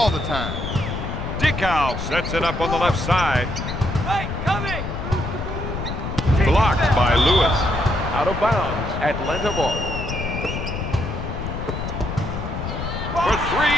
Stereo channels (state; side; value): noise; left; rumble, 5 dB below the sound